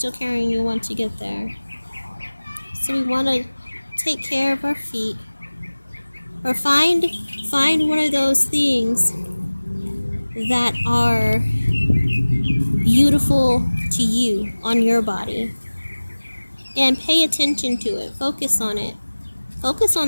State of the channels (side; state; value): both; inverted; correlation -1.00